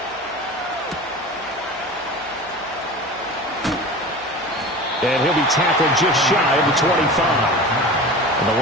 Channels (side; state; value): left; noise; hum, 28 dB below the sound